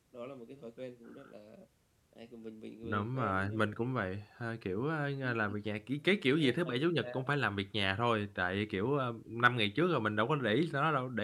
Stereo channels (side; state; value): both; identical; correlation 1.00